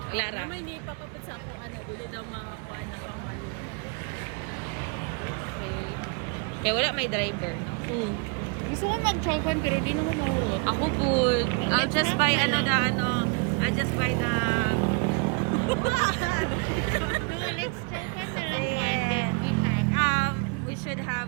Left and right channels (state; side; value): quieter; left; 31.4 dB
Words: Wala ra. May ni papapit sa ako. Dili daw mga kuha na pang mali. Okay. Kaya wala may driver, no? Gusto ko mag-chokan pero di na ako mahurot. Ako po, I'll just buy I'll just buy the what? So, let's chokan na lang Yeah. one then we have. We